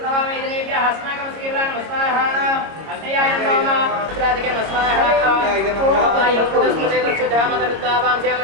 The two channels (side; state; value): left; late; 26 ms